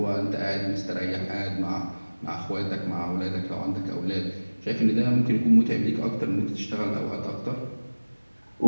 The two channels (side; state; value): both; inverted; correlation -1.00